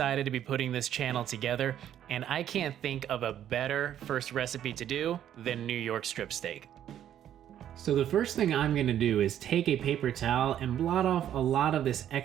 to be putting this channel together, and I can't think of a better first recipe to do than New York strip steak. So the first thing I'm gonna do is take a paper towel and blot off a lot of this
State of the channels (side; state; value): left; quieter; 10.7 dB